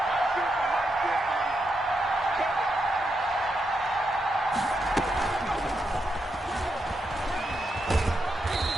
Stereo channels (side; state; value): both; normal; correlation 0.83